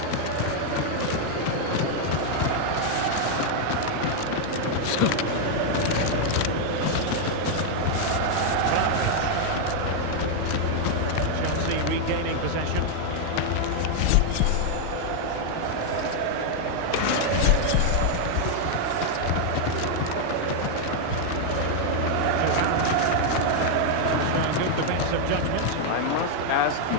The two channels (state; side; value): different; both; correlation 0.00